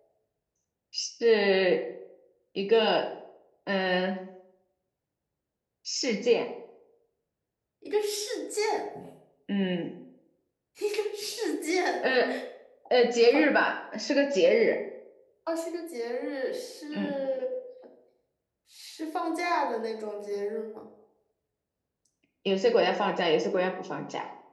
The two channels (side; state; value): both; identical; correlation 1.00